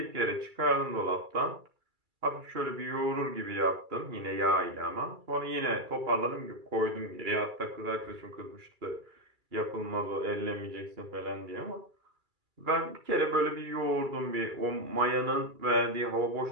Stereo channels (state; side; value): late; left; 2.3 ms